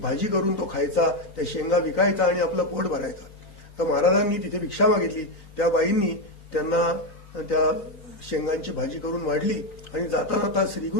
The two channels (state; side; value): late; right; 3.9 ms